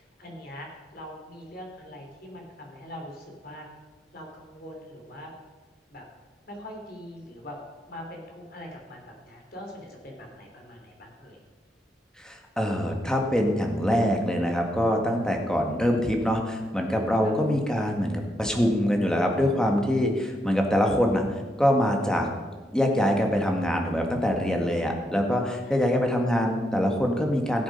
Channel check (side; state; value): both; normal; correlation 0.79